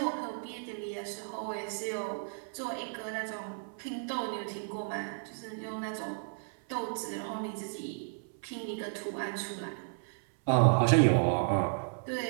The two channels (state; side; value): silent; left; 55 dB below the other